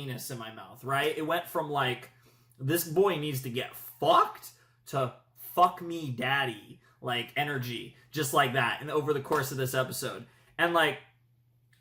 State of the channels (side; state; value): both; identical; correlation 1.00